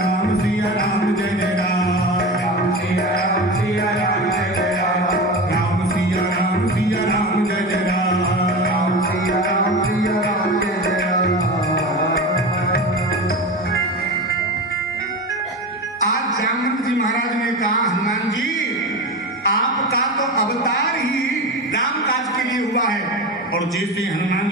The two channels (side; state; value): both; normal; correlation 0.26